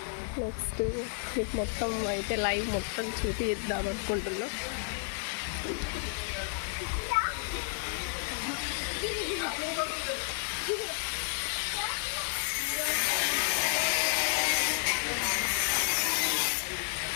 నెక్స్ట్ మీకు మొత్తం అయితే లైవ్ మొత్తం చూపిద్దాం అనుకుంటున్నా.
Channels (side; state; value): right; silent; digital silence